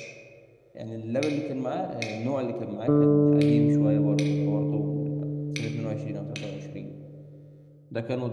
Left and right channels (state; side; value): identical; both; correlation 1.00